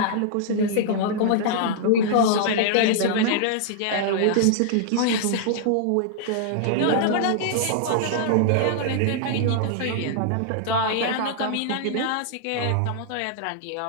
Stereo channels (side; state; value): both; different; correlation -0.01